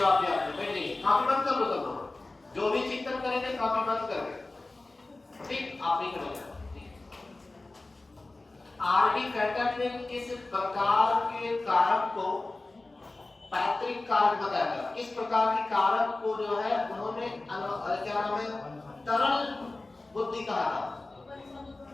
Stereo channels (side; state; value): right; quieter; 3.1 dB